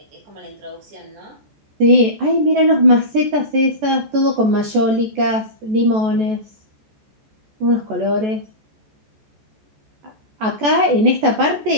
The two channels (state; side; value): late; left; 14 ms